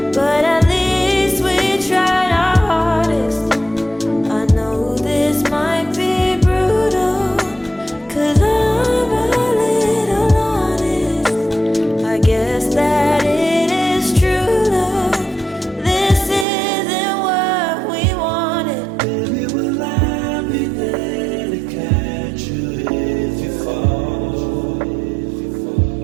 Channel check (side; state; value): left; drops out; at 16.4 s